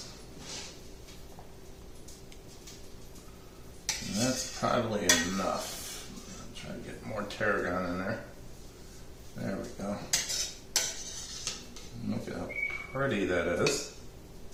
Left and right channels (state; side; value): identical; both; correlation 1.00